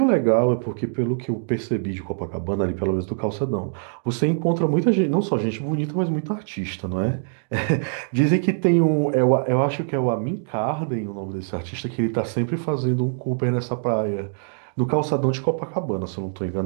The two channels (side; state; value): left; silent; digital silence